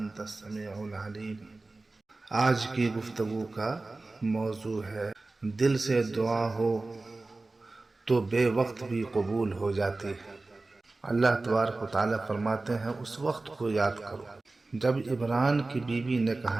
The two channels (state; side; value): quieter; left; 3.3 dB